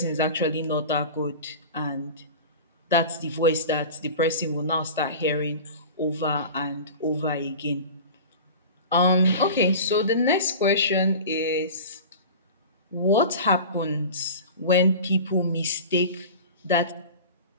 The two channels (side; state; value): both; inverted; correlation -0.35